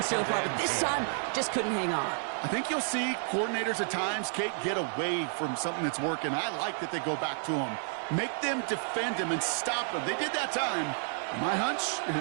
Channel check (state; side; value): silent; left; 57 dB below the other